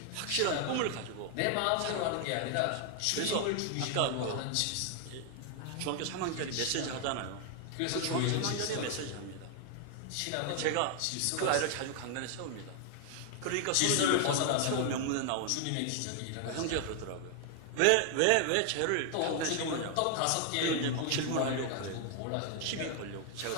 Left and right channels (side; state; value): both; different; correlation 0.00